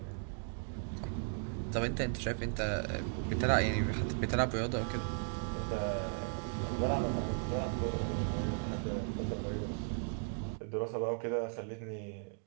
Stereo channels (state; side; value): silent; left; 54 dB below the other